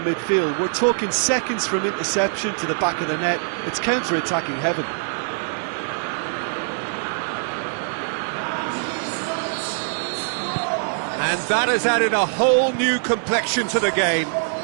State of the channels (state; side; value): silent; left; digital silence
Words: midfield. We're talking seconds from interception to the back of the net. It's counter-attacking heaven. And that has added a whole new complexion to the game.